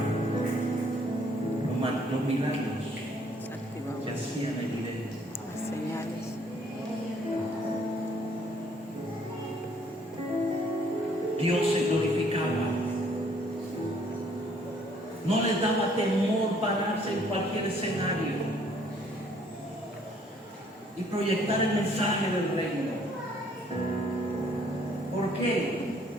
los milagros se hacían evidentes. Las señales. Dios se glorificaba. No les daba temor pararse en cualquier escenario y proyectar el mensaje del reino. ¿Por qué?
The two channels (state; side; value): normal; both; correlation 0.63